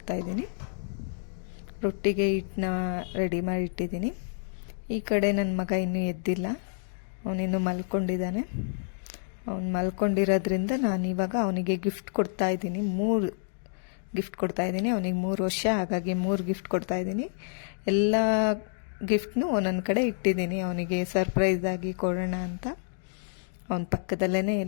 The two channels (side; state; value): right; silent; digital silence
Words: ರೊಟ್ಟಿಗೆ ಹಿಟ್ಟನ್ನ ರೆಡಿ ಮಾಡಿ ಇಟ್ಟಿದ್ದೀನಿ. ಈ ಕಡೆ ನನ್ನ ಮಗ ಇನ್ನೂ ಎದ್ದಿಲ್ಲ, ಅವನಿನ್ನೂ ಮಲ್ಕೊಂಡಿದ್ದಾನೆ. ಅವನು ಮಲ್ಕೊಂಡಿರೋದ್ರಿಂದ ನಾನಿವಾಗ ಅವನಿಗೆ ಗಿಫ್ಟ್ ಕೊಡ್ತಾಯಿದ್ದೀನಿ. 3 ಗಿಫ್ಟ್ ಕೊಡ್ತಾಯಿದ್ದೀನಿ. ಅವನಿಗೆ 3 ವರ್ಷ, ಹಾಗಾಗಿ 3 ಗಿಫ್ಟ್ ಕೊಡ್ತಾಯಿದ್ದೀನಿ. ಎಲ್ಲ ಗಿಫ್ಟ್ನೂ ಒಂದೊಂದು ಕಡೆ ಇಟ್ಟಿದ್ದೀನಿ, ಅವನಿಗೆ ಸರ್ಪ್ರೈಸ್ ಆಗಿ ಕೊಡೋಣ ಅಂತ. ಅವನ ಪಕ್ಕದಲ್ಲೇ